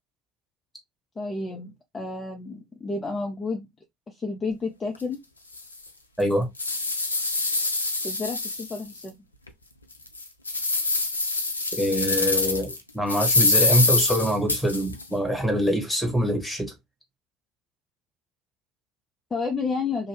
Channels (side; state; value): both; normal; correlation 0.14